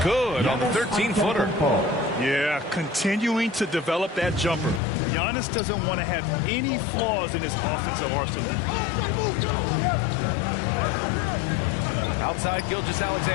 Good on the 13-footer. Yeah, continuing to develop that jumper. Giannis doesn't want to have any flaws in his offensive arsenal. Outside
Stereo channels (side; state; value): right; drops out; at 4.8 s